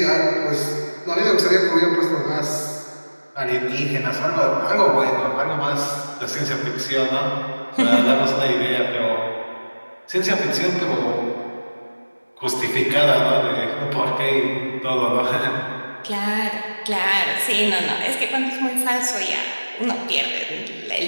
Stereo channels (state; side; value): inverted; both; correlation -1.00